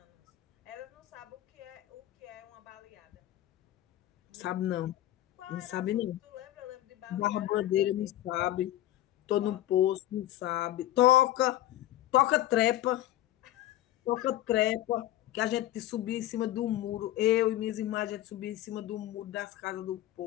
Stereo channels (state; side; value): quieter; right; 14.2 dB